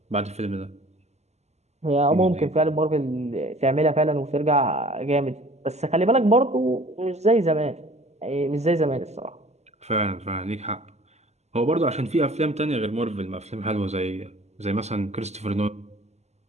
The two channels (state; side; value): late; left; 0.32 ms